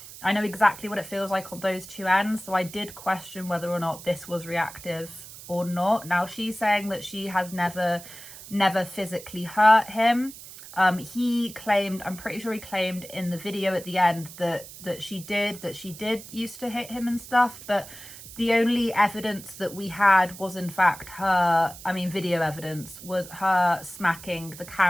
I know exactly what it feels like on those two ends, so I did question whether or not this was reactive or not. Now, she's saying that she has never physically hurt him. He claimed, I'm pretty sure he claimed in the video at the end that she did used to hit him and stuff, but the only evidence that we had was in fact her, I mean video evidence, was her smacking the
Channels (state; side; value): noise; right; hiss, 15 dB below the sound